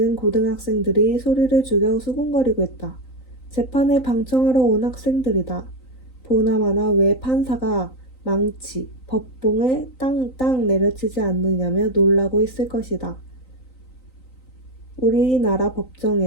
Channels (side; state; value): right; late; 3.9 ms